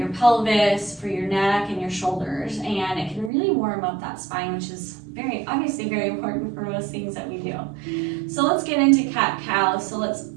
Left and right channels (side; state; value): left; drops out; at 3.3 s